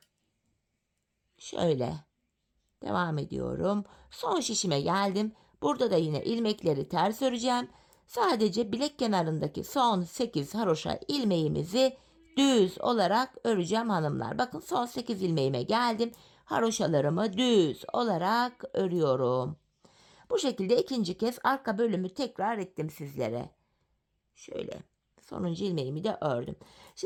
Şöyle devam ediyorum. Son şişime geldim. Burada da yine ilmekleri ters öreceğim. Sadece bilek kenarındaki son 8 haroşa ilmeğimizi düz olarak öreceğim hanımlar. Bakın son 8 ilmeğime geldim. Haroşalarımı düz olarak örüyorum. Bu şekilde ikinci kez arka bölümü tekrar ettim sizlere. Şöyle sonuncu ilmeğimi de ördüm.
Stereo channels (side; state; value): both; identical; correlation 1.00